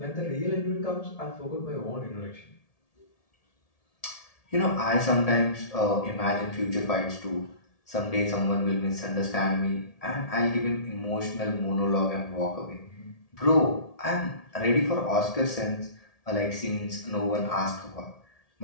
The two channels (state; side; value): late; right; 1.7 ms